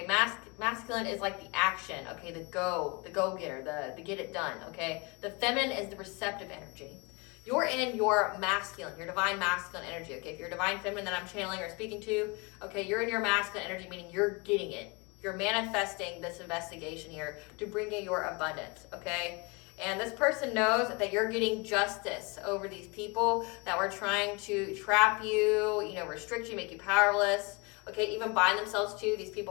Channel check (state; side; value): quieter; right; 28.7 dB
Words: masculine is like the action. Okay, the go-getter, the get it done. Okay, the feminine is the receptive energy. You're in your masculine, your divine masculine energy. Okay, if you're divine feminine that I'm channeling or speaking to, okay, you're in your masculine energy, meaning you're getting it. You're manifesting this investigation here to bring you your abundance. Okay. And this person knows that you're getting justice over these people that were trying to trap you, restrict you, make you powerless, okay, even bind themselves to these